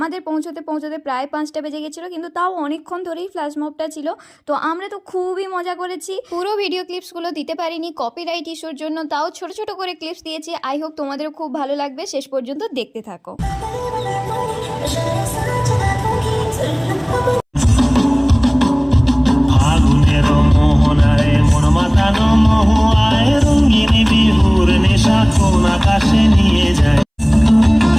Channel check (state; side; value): identical; both; correlation 1.00